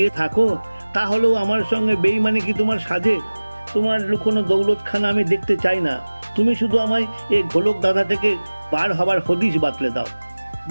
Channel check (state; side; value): inverted; both; correlation -1.00